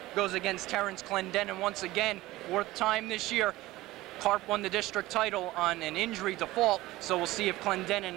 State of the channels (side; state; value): left; quieter; 17.9 dB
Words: goes against Terrence Clendenin once again, 4th time this year. Karp won the district title on an injury default, so we'll see if